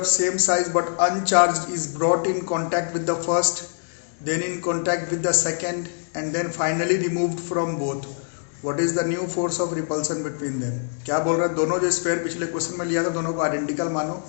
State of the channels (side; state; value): right; silent; digital silence